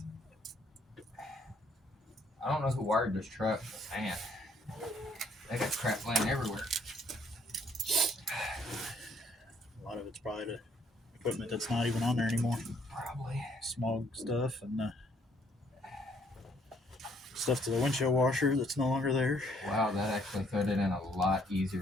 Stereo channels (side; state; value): both; normal; correlation 0.65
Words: I don't know who wired this truck, but man, they got crap laying everywhere. a lot of it's probably the equipment that's not even on there anymore. Probably. Smog stuff and stuff to the windshield washer that's no longer there. Wow, that actually fit it in a lot easier